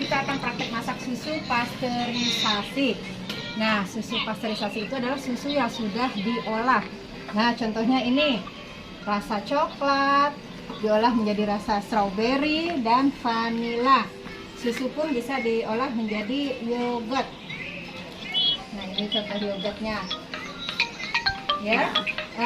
akan praktek masak susu pasteurisasi. Nah, susu pasteurisasi itu adalah susu yang sudah diolah. Nah, contohnya ini rasa coklat diolah menjadi rasa strawberry dan vanila. Susu pun bisa diolah menjadi yogurt. Nah, ini contoh yogurtnya. Ya.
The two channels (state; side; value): identical; both; correlation 1.00